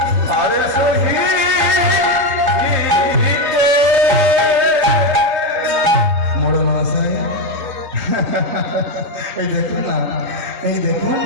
এই দেখুন না, এই দেখুন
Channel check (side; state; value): left; late; 3.2 ms